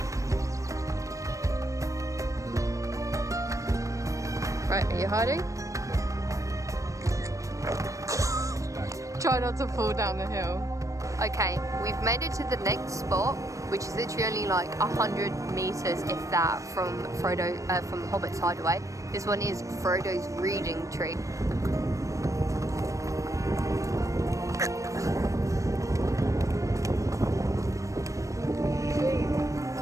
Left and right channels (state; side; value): late; left; 0.16 ms